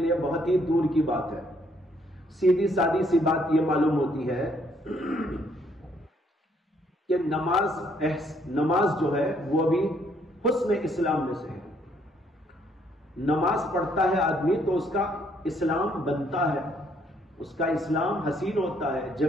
یہ بہت ہی دور کی بات ہے، سیدھی سادی سی بات یہ معلوم ہوتی ہے کہ نماز جو ہے وہ بھی حسن اسلام میں سے ہے۔ نماز پڑھتا ہے آدمی تو اس کا اسلام بنتا ہے، اس کا اسلام حسین ہوتا ہے،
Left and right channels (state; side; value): normal; both; correlation 0.68